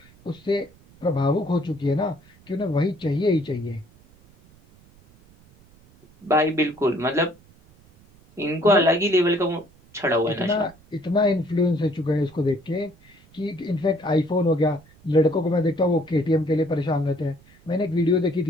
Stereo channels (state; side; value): noise; right; rumble, 28 dB below the sound